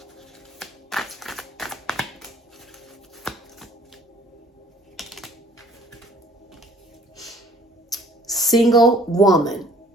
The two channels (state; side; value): normal; both; correlation 0.56